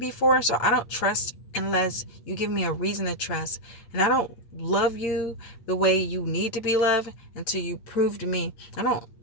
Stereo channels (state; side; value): late; right; 8.3 ms